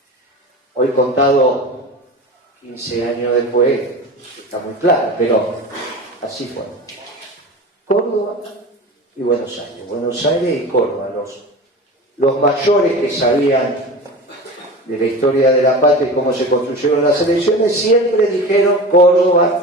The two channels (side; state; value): both; normal; correlation 0.31